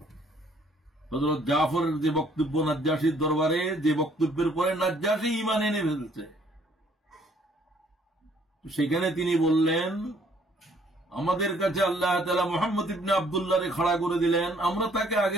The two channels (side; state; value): both; normal; correlation 0.62